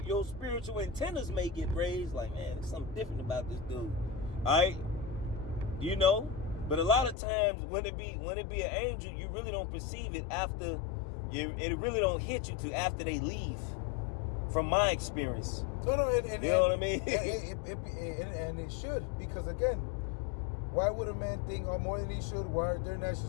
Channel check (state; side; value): drops out; right; at 7.2 s